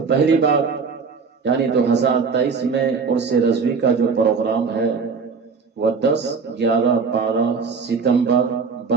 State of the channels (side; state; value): left; quieter; 5.2 dB